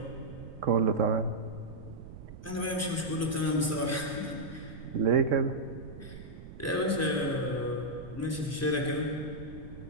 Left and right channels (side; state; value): right; noise; rumble, 14 dB below the sound